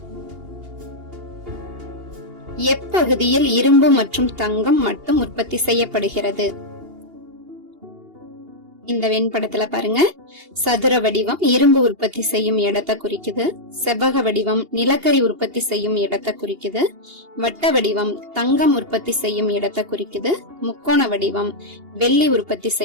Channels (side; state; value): left; late; 2.8 ms